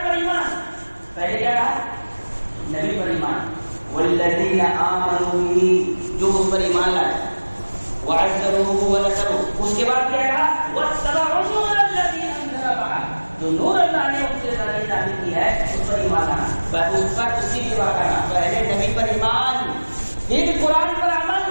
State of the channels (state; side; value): inverted; both; correlation -1.00